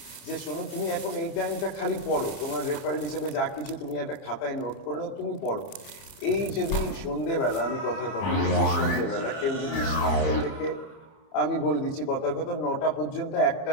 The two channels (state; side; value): late; right; 30 ms